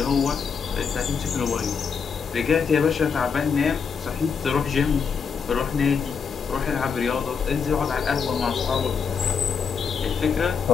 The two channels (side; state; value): right; quieter; 6.1 dB